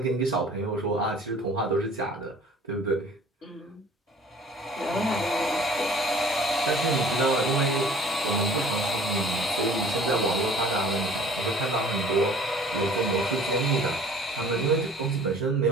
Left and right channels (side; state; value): both; normal; correlation 0.50